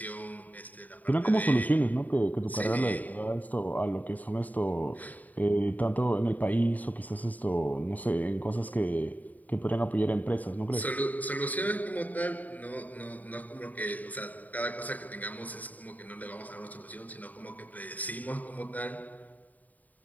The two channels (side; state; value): right; late; 0.077 ms